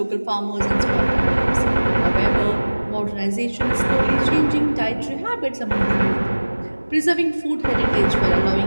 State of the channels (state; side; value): inverted; both; correlation -1.00